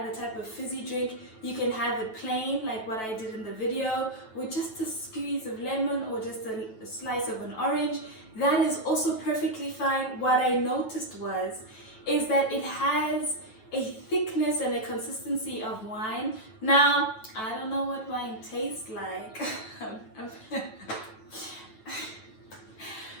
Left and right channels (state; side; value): late; right; 9.1 ms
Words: type of fizzy drink, You can have it plain like what I did in the video, with just a squeeze of lemon or just a slice of an orange. That is also perfectly fine. What I noticed is that it has a thickness and a consistency of wine. Now, I don't know what wine tastes like.